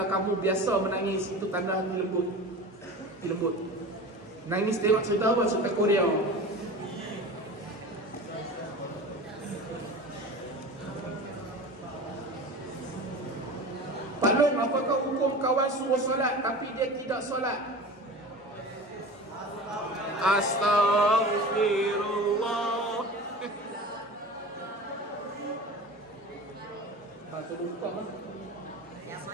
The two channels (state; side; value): normal; both; correlation 0.34